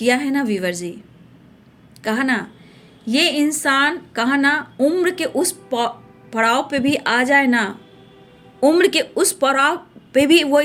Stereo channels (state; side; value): identical; both; correlation 1.00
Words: है ना वीवर जी, कहा ना, ये इंसान, कहा ना, उम्र के उस पड़ाव पे भी आ जाए ना, उम्र के उस पड़ाव पे भी वो